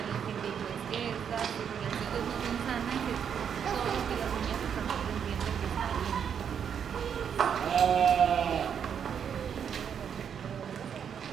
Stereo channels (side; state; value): left; quieter; 7.8 dB